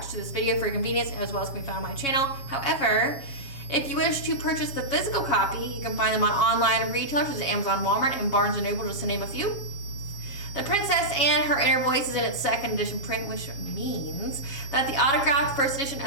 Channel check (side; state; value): right; late; 7.3 ms